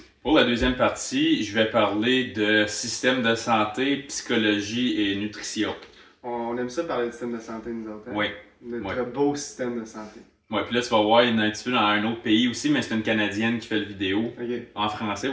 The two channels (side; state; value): both; identical; correlation 1.00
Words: Pour la deuxième partie, je vais parler de système de santé, psychologie et nutrition. On aime ça parler du système de santé, nous autres. Hein? Oui. Notre beau système de santé. Ouais, puis là, tu vas voir, il y en a un petit peu dans un autre pays aussi, mais c'est une Canadienne qui fait le vidéo. Ok, En français